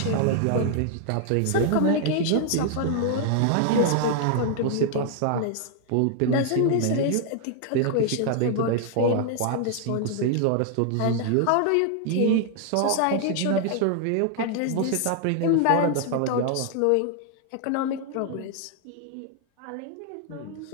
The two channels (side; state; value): both; different; correlation 0.00